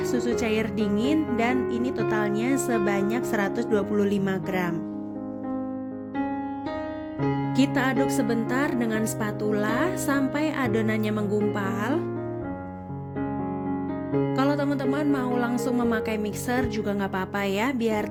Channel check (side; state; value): both; identical; correlation 1.00